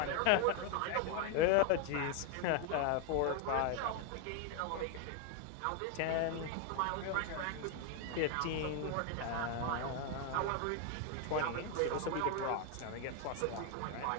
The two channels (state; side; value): different; both; correlation 0.01